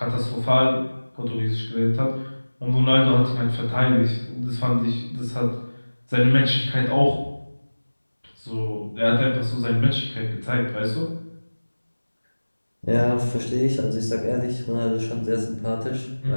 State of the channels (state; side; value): inverted; both; correlation -1.00